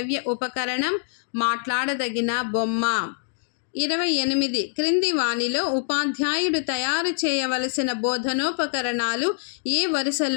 ఉపకరణం మాట్లాడదగిన బొమ్మ. 28. క్రింది వానిలో ఉపాధ్యాయుడు తయారు చేయవలసిన బోధనోపకరణాలు ఏ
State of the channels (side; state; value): right; silent; digital silence